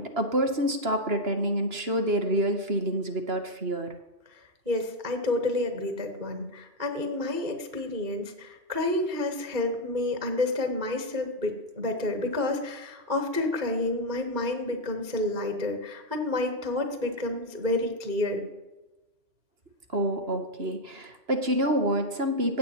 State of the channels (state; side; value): late; left; 2.9 ms